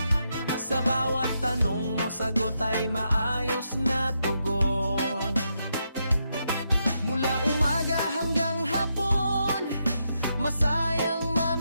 Sa bawat tanong mo, sagot ay maayos na tugon. Mula umaga hanggang hapon, masayang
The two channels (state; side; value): inverted; both; correlation -0.82